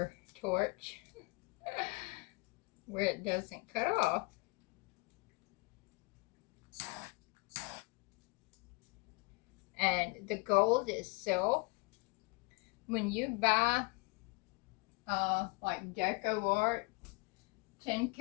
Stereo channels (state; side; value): quieter; right; 27.9 dB